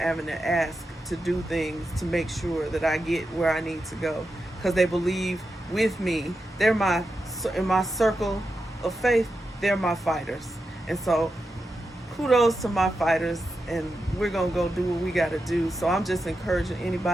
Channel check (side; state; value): both; normal; correlation 0.89